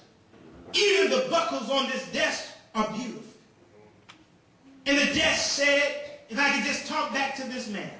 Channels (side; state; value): both; identical; correlation 1.00